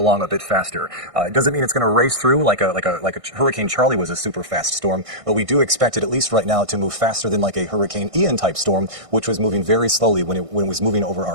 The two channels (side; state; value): left; late; 1.6 ms